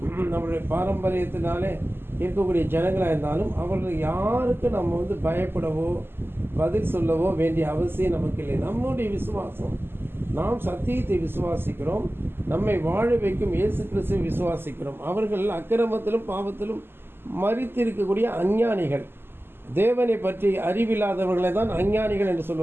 நம்மளுடைய பாரம்பரியத்தினாலே இருக்கக்கூடிய ஜனங்களாக இருந்தாலும், அவர்கள் யாருக்கு நம்ம பயப்படவோ பதில் சொல்லவோ வேண்டிய அவசியம் நமக்கு இல்லை. நம்முடைய விசுவாசம், நாம் சத்தியத்தை விசுவாசிக்கிறோம், நம்மை வாழ வைக்கும் இயேசு கிறிஸ்துவை விசுவாசிக்கிறோம். அவர்கள் அக்கிரமத்திலும் பாவத்திலும் மரித்திருக்கக்கூடிய அஞ்ஞானிகள், தேவனை பற்றி அறிவில்லாதவர்களை தான் அஞ்ஞானிகள் என்று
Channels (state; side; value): late; left; 0.11 ms